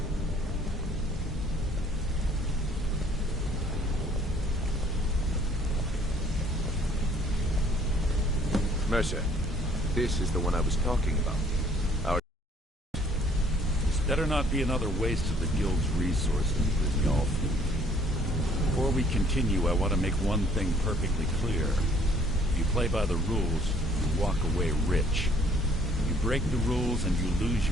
Mercer. This is the one I was talking about. This better not be another waste of the Guild's resources, Brynjolf. Before we continue, I want to make one thing perfectly clear. If you play by the rules, you walk away rich. You break the rules and you lose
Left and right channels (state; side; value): normal; both; correlation 0.60